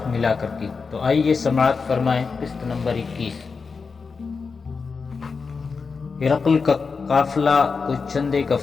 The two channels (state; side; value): quieter; right; 4.9 dB